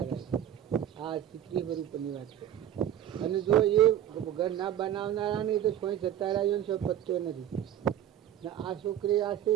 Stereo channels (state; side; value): quieter; left; 11.0 dB